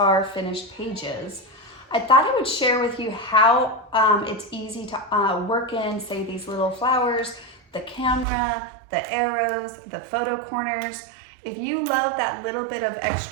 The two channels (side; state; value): left; drops out; at 8.2 s